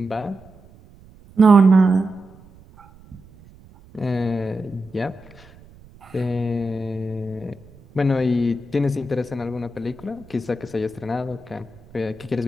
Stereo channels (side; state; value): right; noise; rumble, 24 dB below the sound